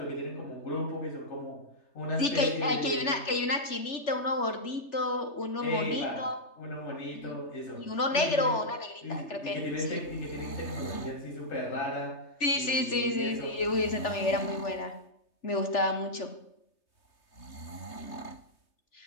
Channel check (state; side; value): late; right; 3.4 ms